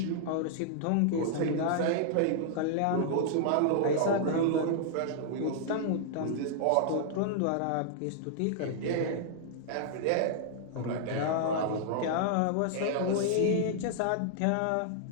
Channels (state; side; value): different; both; correlation -0.01